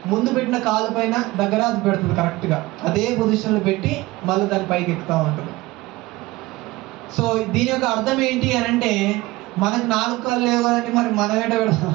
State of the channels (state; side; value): quieter; left; 19.7 dB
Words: ముందు పెట్టిన కాలు పైన దగ్గర అది పెడుతుంది. కరెక్ట్గా అదే పొజిషన్లో పెట్టి మళ్ళీ దాని పైకి ఎక్కుతూ ఉంటుంది. సో దీని యొక్క అర్థం ఏంటి అని అంటే, మనకు 4 కాళ్ళు లేవు కదండి, మరి మనం ఏంటో